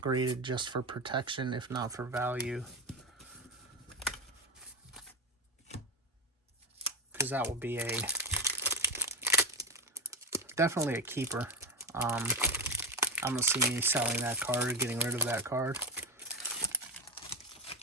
graded just for protection, if not for value, because that will be definitely a keeper. I don't see me selling that card or getting rid of that card.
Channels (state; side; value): normal; both; correlation 0.10